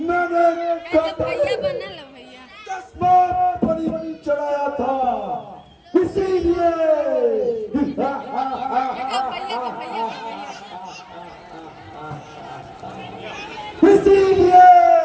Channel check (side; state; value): both; identical; correlation 1.00